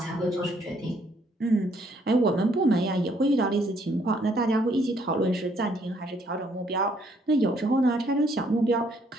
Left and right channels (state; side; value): normal; both; correlation 0.68